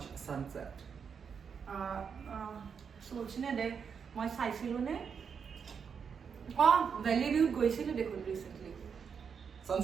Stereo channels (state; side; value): quieter; left; 6.6 dB